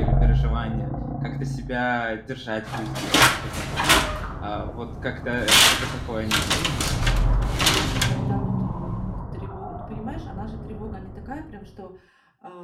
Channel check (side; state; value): both; identical; correlation 1.00